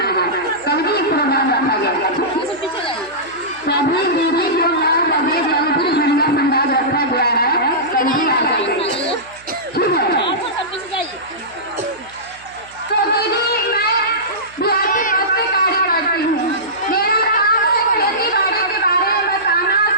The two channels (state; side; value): noise; right; hum, 27 dB below the sound